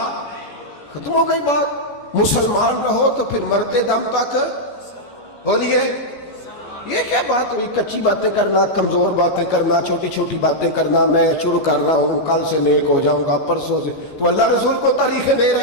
ختم ہو گئی بات. مسلمان رہو تو پھر مرتے دم تک بولیے. یہ کیا بات ہوئی؟ کچی باتیں کرنا، کمزور باتیں کرنا، چھوٹی چھوٹی باتیں کرنا. میں شروع کر رہا ہوں، کل سے نیک ہو جاؤں گا، پرسوں سے. تو اللہ رسول کو تاریخیں دے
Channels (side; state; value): right; late; 14 ms